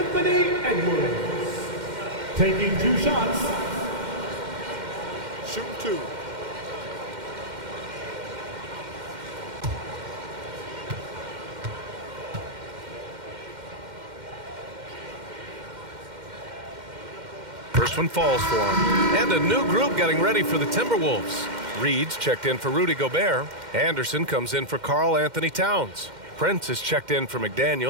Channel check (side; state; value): left; late; 2.1 ms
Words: Edwards. Taking 2 shots. Shooting 2. First one falls for him. And a new group getting ready for the Timberwolves. Reed's checked in for Rudy Gobert. Anderson comes in for Karl Anthony Towns. Prince is checked in for